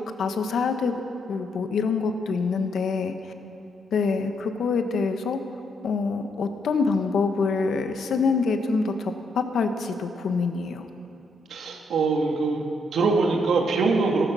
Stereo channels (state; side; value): normal; both; correlation 0.75